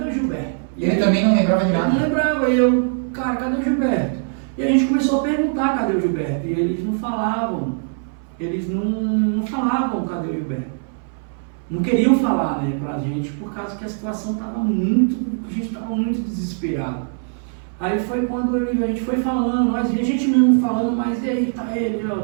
o Gilberto? Ele também não lembrava de nada. Eu não lembrava, cara, cadê o Gilberto? E a gente começou a perguntar cadê o Gilberto, e eles não falavam, não falavam cadê o Gilberto. Não queriam falar, né, pra gente, por causa que a situação estava a gente estava muito desesperado. Aí foi quando a gente foi falando, a gente mesmo falando, mas e aí, tá ele, ó,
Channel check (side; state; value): left; silent; 61 dB below the other